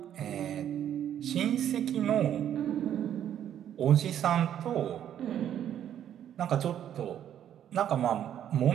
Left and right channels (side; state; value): left; quieter; 10.3 dB